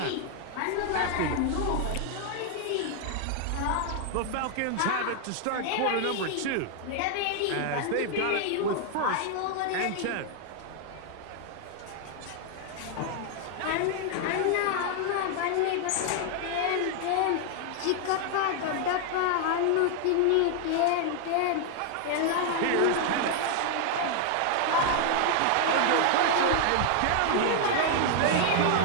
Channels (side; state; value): both; different; correlation 0.00